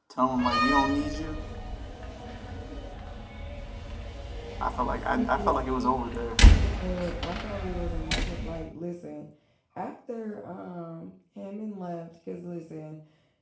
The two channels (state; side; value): identical; both; correlation 1.00